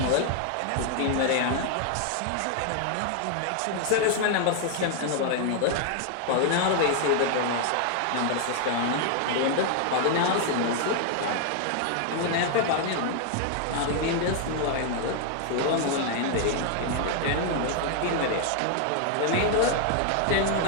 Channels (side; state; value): both; different; correlation 0.00